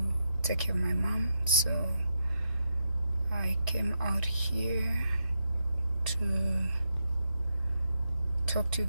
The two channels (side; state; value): both; inverted; correlation -0.84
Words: take care of my mom. So, I came out here to talk to you